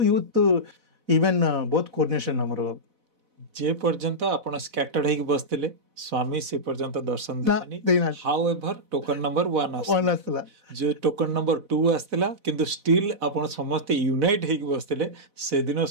यूथ इवन बहुत कोऑर्डिनेशन हमर जे पर्यंत आपण स्कैटर्ड हेक बसतिले स्वामी से पर्यंत दर्शन देनी हाउएवर टोकन नंबर 1 आसला जो टोकन नंबर 2 आसला किंतु स्टिल आपण समस्त यूनाइट हेक बसतिले से दिन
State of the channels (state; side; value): late; left; 4.0 ms